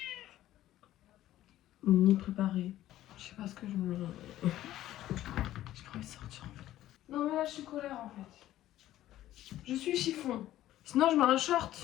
ni préparée. Je sais pas ce que je me... J'ai pas envie de sortir en fait. Non mais là je suis colère en fait. Je suis chiffon. Sinon je mets un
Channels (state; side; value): quieter; right; 13.8 dB